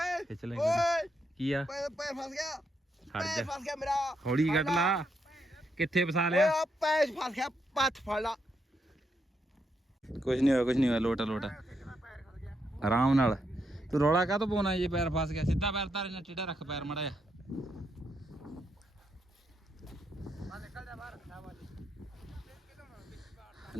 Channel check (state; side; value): normal; both; correlation 0.79